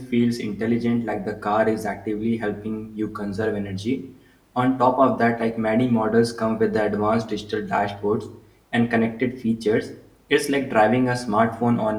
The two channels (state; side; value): identical; both; correlation 1.00